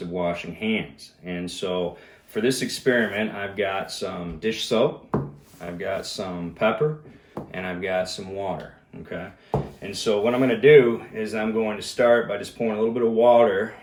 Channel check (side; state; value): both; identical; correlation 1.00